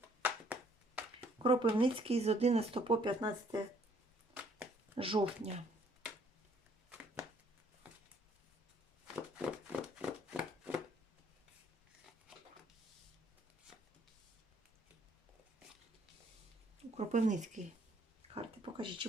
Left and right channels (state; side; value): normal; both; correlation 0.63